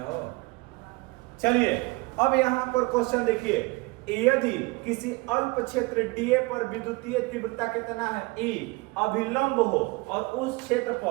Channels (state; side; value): quieter; left; 24.8 dB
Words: चलिए अब यहाँ पर क्वेश्चन देखिए, यदि किसी अल्प क्षेत्र डीए पर विद्युतीय तीव्रता कितना है E अभिलंब हो और उस क्षेत्र